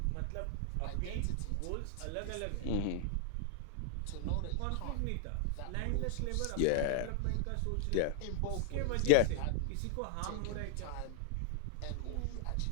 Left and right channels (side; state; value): both; different; correlation -0.01